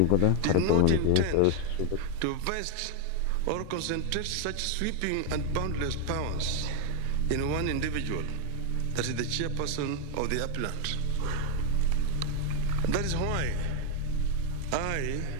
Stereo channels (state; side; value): different; both; correlation 0.00